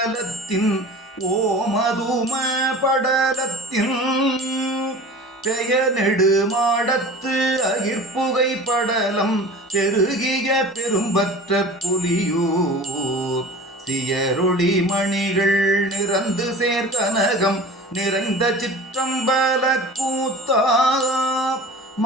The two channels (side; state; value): both; normal; correlation 0.40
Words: ஓமதும படலத்தின் பெயர் நெடுமாடத்து அகிர்புகை படலம் பெருகிய பெரும்பற்ற புலியூர் சியரொளி மணிகள் நிறந்து சேர்கனகம் நிறைந்த சிற்றம்பல கூத்தா